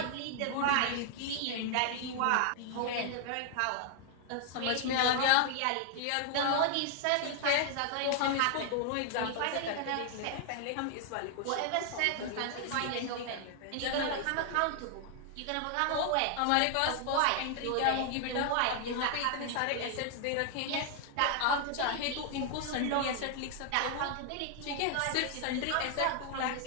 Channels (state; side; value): different; both; correlation 0.00